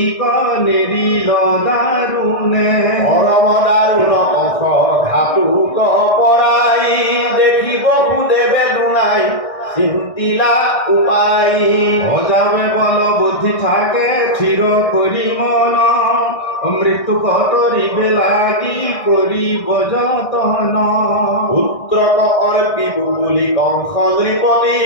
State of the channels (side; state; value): right; late; 1.6 ms